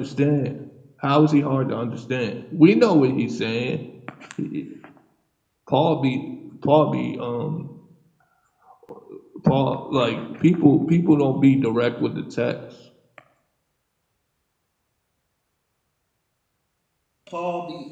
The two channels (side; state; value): both; identical; correlation 1.00